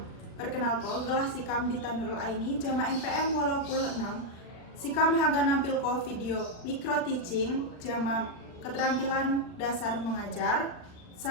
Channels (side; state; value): right; late; 39 ms